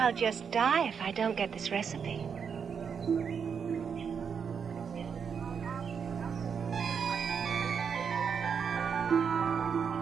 just die if I don't get this recipe.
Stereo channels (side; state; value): left; quieter; 6.7 dB